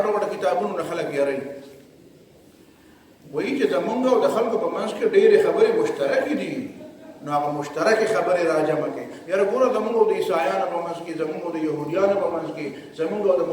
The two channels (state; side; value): identical; both; correlation 1.00